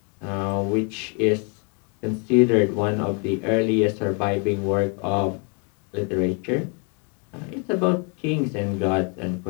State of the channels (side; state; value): right; quieter; 36.5 dB